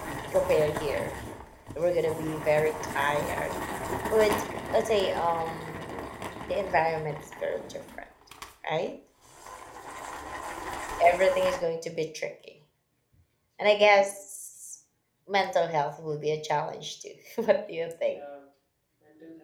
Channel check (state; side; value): identical; both; correlation 1.00